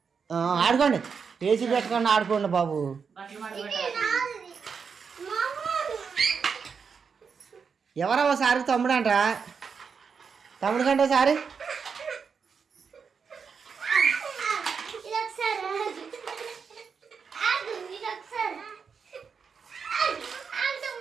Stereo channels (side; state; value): left; quieter; 6.0 dB